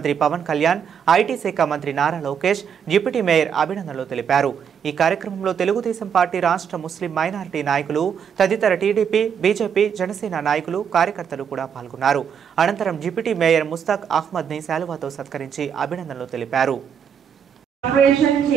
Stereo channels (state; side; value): quieter; left; 7.6 dB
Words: పవన్ కళ్యాణ్, ఐటీ శాఖ మంత్రి నారా లోకేష్, డిప్యూటీ మేయర్ అభినందనలు తెలిపారు. ఈ కార్యక్రమంలో తెలుగుదేశం పార్టీ రాష్ట్ర ముస్లిం మైనారిటీ నాయకులు, తదితర టీడీపీ, బీజేపీ, జనసేన నాయకులు, కార్యకర్తలు కూడా పాల్గొన్నారు. అనంతరం డిప్యూటీ మేయర్ ముస్తాక్ అహ్మద్ ని శాలువాతో సత్కరించి అభినందనలు తెలిపారు. కార్పొరేషన్